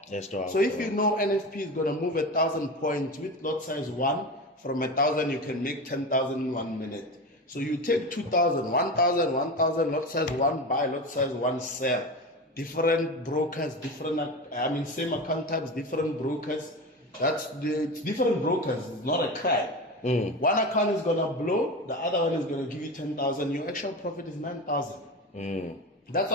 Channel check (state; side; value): normal; both; correlation 0.25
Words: So if you know NFP is going to move 1,000 points with lot size 1, from 1,000 you can make 10,000 in 1 minute. So you take 2,000, 1,000, 1,000, lot size 1 buy, lot size 1 sell. Different brokers, same account types, different brokers. It's different brokers. It's not a crime. One account is gonna blow, the other one is gonna give you 10,000. Your actual profit is 9,000. That's